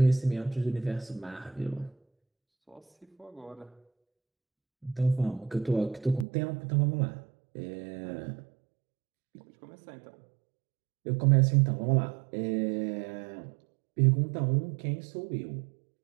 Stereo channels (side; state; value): left; drops out; at 6.2 s